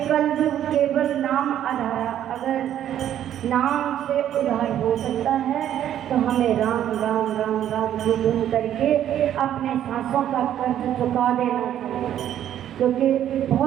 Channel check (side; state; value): left; quieter; 10.9 dB